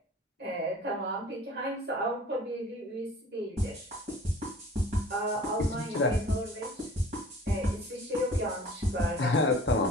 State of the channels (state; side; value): normal; both; correlation 0.47